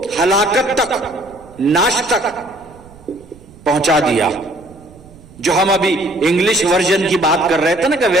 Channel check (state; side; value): noise; right; rumble, 23 dB below the sound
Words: हलाकत तक, नाश तक पहुंचा दिया। जो हम अभी इंग्लिश वर्जन की बात कर रहे थे ना कि